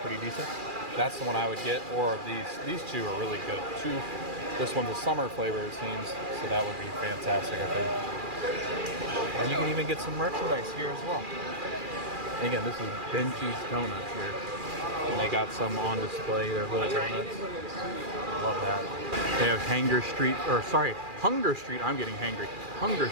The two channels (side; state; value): left; late; 2.4 ms